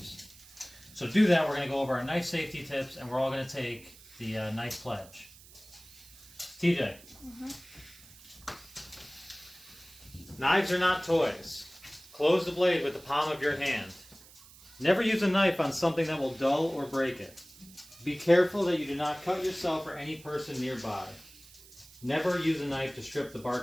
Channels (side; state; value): right; noise; hiss, 22 dB below the sound